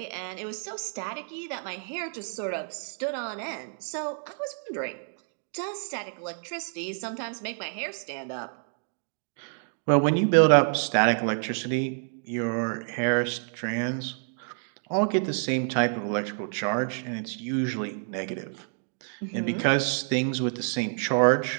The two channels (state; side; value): silent; left; 59 dB below the other